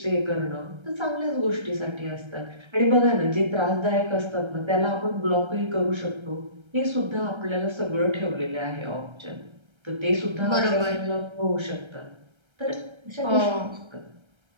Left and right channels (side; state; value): left; late; 1.3 ms